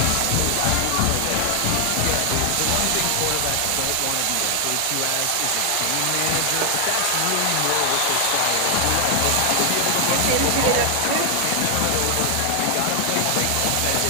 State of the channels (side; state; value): both; different; correlation 0.00